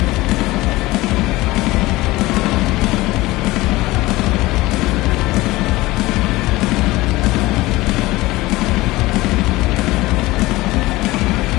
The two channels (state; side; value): quieter; right; 19.4 dB